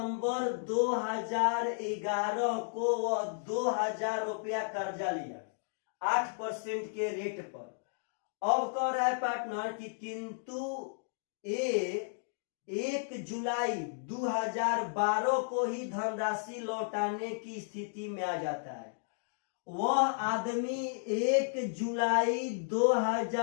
2011 को वह 2000 रुपया कर्जा लिया 8% के रेट पर। अब कह रहा है पार्टनर कि किंतु ए 1 जुलाई 2012 को ही धनराशि लौटाने की स्थिति में आ जाता है। वह आदमी 1 जुलाई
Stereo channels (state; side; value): silent; right; digital silence